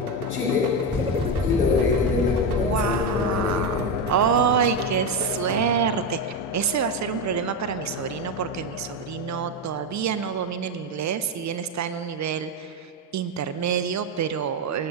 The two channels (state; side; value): normal; both; correlation 0.10